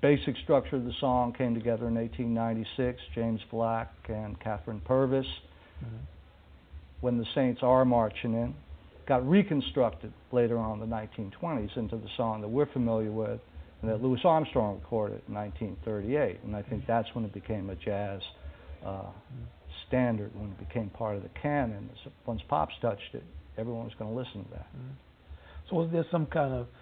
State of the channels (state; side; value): identical; both; correlation 1.00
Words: basic structure of the song came together in 1896, James Black and Catherine Purvis, when the Saints are marching in. Got reconstructed later on in the 1920s into the song that we're familiar with and that Louis Armstrong recorded in 1938. And I think that's when it became a jazz standard, when it became part of the canon. Once Pops touched it, everyone was going to listen to that. So was there some kind of